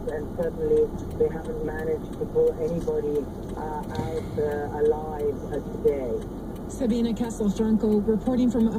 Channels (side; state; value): both; identical; correlation 1.00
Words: and certainly they haven't managed to pull anybody out alive today. Sabina Castelfranco reporting from